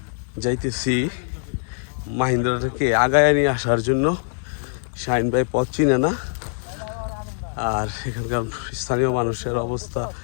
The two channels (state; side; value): silent; right; digital silence